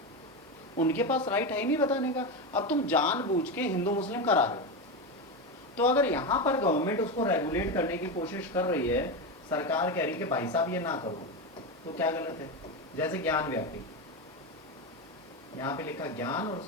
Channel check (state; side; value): normal; both; correlation 0.15